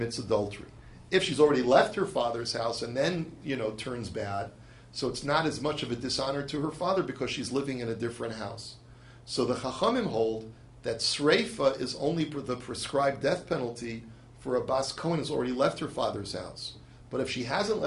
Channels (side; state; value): both; identical; correlation 1.00